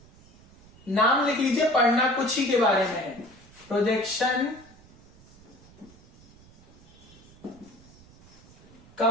नाम लिख लीजिए, पढ़ना कुछ ही के बारे में है। Projection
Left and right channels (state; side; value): noise; right; rumble, 24 dB below the sound